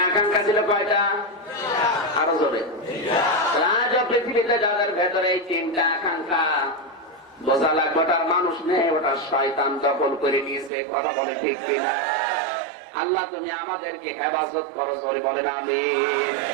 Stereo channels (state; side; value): drops out; left; at 10.7 s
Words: আকাঙ্ক্ষা ছিল কয়টা? আরো জোরে। রাজ পৃথিবীতে যাদের ভেতরে এই 3টা আকাঙ্ক্ষা, বোঝা লাগবে ওটার মানুষ নেই, ওটা শয়তান দখল করে নিয়েছে। কথা বলে ঠিক কিনা? আল্লাহ তুমি আমাদেরকে হেফাজত করো, জোরে বলেন আমিন।